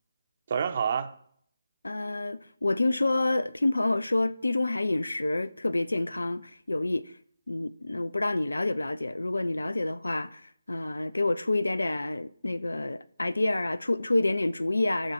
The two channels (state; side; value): inverted; both; correlation -0.96